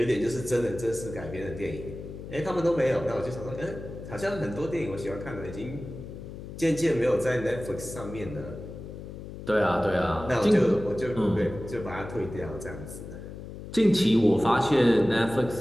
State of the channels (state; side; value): noise; left; hum, 11 dB below the sound